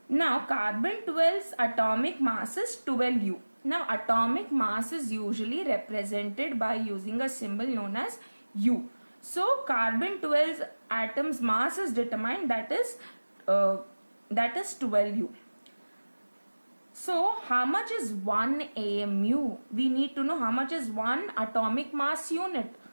Now carbon 12's atomic mass is 12U. Now atomic mass is usually represented by using a symbol known as U. So carbon 12's atom's mass is determined, that is 12U. So how much is 1 AMU? We need to know how much is 1 atomic mass unit.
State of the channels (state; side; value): inverted; both; correlation -1.00